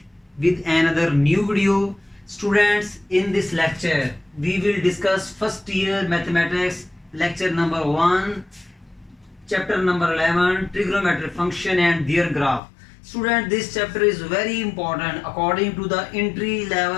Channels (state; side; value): drops out; right; at 12.6 s